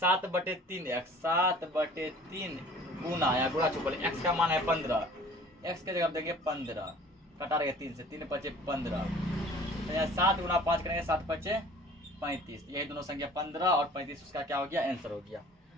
7/3 गुना या गुणा छुपल, x का मान है 15, x के जगह देंगे 15, कटा रहेगा 3 से, 3 × 5 = 15, तो यहाँ 7 गुना 5 करेंगे 7 × 5 = 35। यही दोनों संख्या 15 और 35 उसका क्या हो गया, आंसर हो गया।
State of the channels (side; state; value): both; normal; correlation 0.48